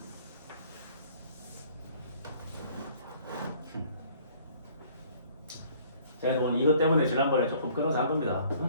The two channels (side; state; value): both; inverted; correlation -0.56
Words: 제가 오늘 이것 때문에 지난번에 조금 끊어서 한 겁니다.